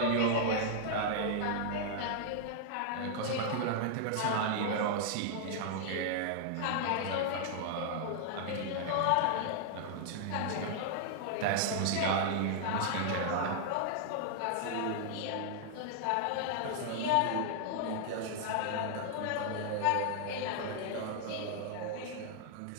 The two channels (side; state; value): both; different; correlation -0.01